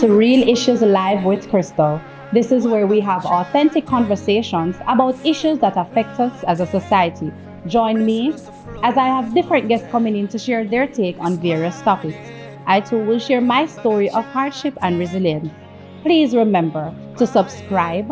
to Real Issues Live with Crystal. This is where we have authentic conversations about issues that affect us as a society. Join me as I have different guests coming in to share their take on various topics. I too will share my story of hardship and resilience. Please remember to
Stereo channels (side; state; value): both; identical; correlation 1.00